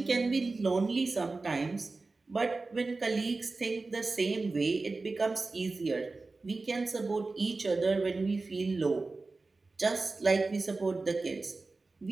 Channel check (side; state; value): left; quieter; 3.6 dB